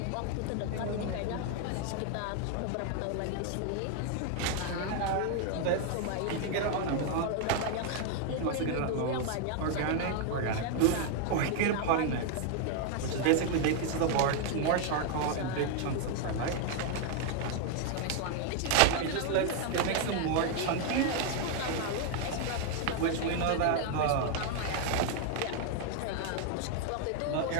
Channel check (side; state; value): both; different; correlation 0.00